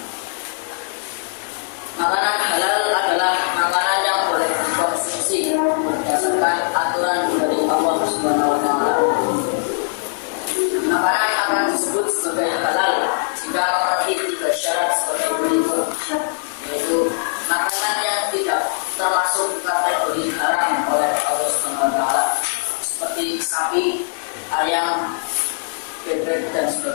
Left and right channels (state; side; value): silent; right; digital silence